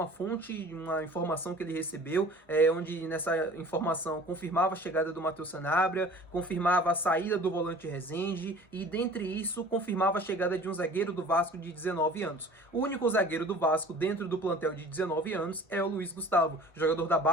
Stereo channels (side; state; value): both; normal; correlation 0.46